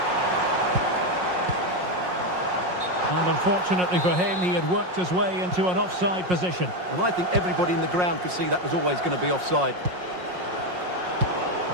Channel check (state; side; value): late; left; 5.5 ms